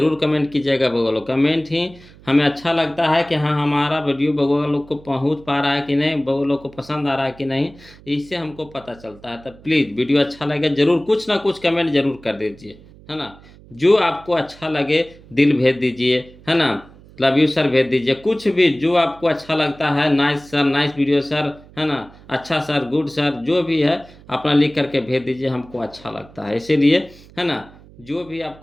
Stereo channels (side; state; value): right; noise; hum, 23 dB below the sound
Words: कमेंट कीजिएगा बोलो। कमेंट ही हमें अच्छा लगता है कि हाँ हमारा वीडियो बगोगा लोग को पहुंच पा रहा है कि नहीं, बगो लोग को पसंद आ रहा है कि नहीं, इससे हमको पता चलता है। तो प्लीज़ वीडियो अच्छा लगे जरूर कुछ ना कुछ कमेंट जरूर कर दीजिए, है ना। जो आपको अच्छा लगे दिल भेज दीजिए, है ना, लव यू सर भेज दीजिए, कुछ भी जो आपको अच्छा लगता है, nice sir, nice video sir, है ना, अच्छा सर, गुड सर, जो भी है अपना लिख करके भेज दीजिए, हमको अच्छा लगता है इसीलिए, है ना। जो भी